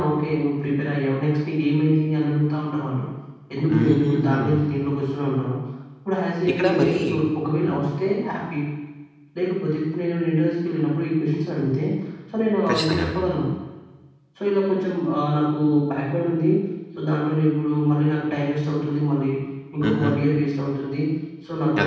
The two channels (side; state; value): both; identical; correlation 1.00